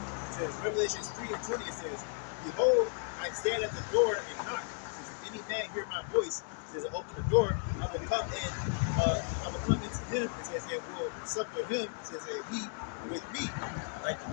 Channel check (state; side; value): silent; right; 55 dB below the other